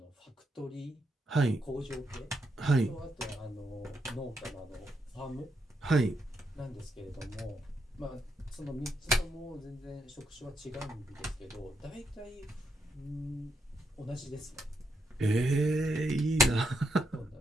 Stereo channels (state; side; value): normal; both; correlation 0.80